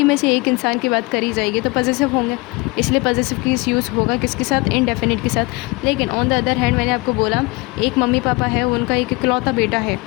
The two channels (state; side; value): quieter; right; 24.9 dB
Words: में से एक इंसान की बात करी जाएगी तो पॉजिटिव होंगे, इसलिए पॉजिटिव केस यूज़ होगा किसके साथ, इनडेफिनिट के साथ। लेकिन ऑन द अदर हैंड मैंने आपको बोला एक मम्मी पापा है, उनका एक इकलौता बेटा है